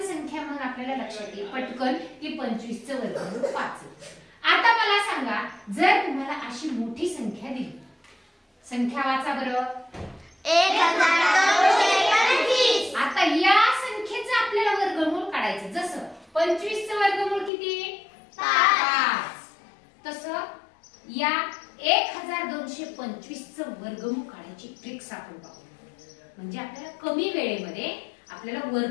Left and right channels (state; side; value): drops out; right; at 17.5 s